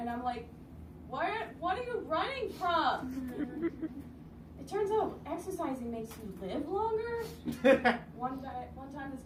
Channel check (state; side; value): identical; both; correlation 1.00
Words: I'm like, what are you running from? It turns out exercising makes you live longer. One time this